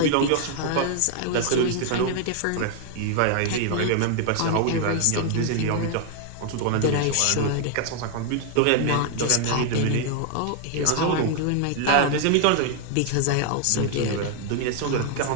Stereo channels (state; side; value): different; both; correlation 0.00